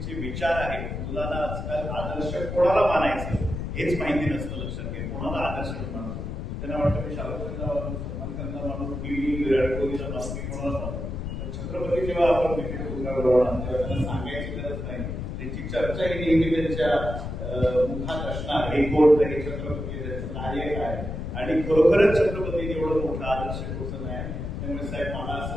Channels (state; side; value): noise; left; rumble, 5 dB below the sound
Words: विचार आहेत. मुलांना आजकाल आदर्श कोणाला मानायचं हेच माहिती नसतं. लक्षात घ्या, कोणाला आदर्श मानतो. त्यांना वाटतं मी शाहरुखला मानू, सलमान खानला मानू, मी विराट कोहलीला मानू, मी कोणाला मानू. तर छत्रपती जेव्हा आपण तिथे पुतळा बनवणार तेव्हा त्यांना सांगायची गरज नाही. त्यांची चर्चा ही नेहमी त्यांच्या मुखात असणार, हे कोण तरी छत्रपती, त्यांचं कार्य काय. आणि खरोखरच छत्रपती एवढं मोठं आदर्श पोचन आहे. त्यामुळे साहेब मला